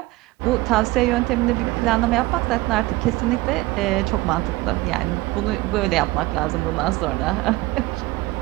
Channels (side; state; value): left; quieter; 19.6 dB